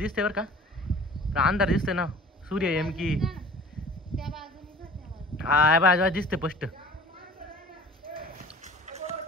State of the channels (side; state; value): both; normal; correlation 0.46